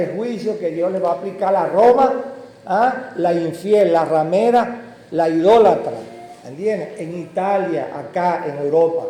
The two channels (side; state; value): both; identical; correlation 1.00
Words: juicio que Dios le va a aplicar a Roma, la infiel, la ramera, la idólatra. ¿Entienden? En Italia, acá en Europa.